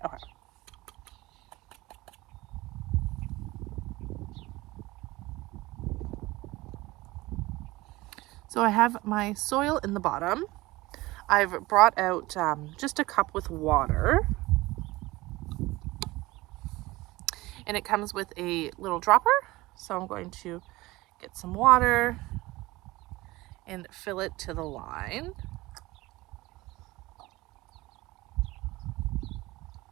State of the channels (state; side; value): quieter; left; 20.0 dB